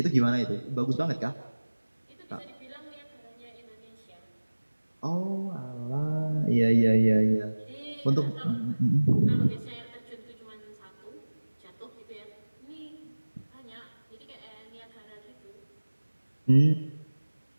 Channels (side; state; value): both; inverted; correlation -1.00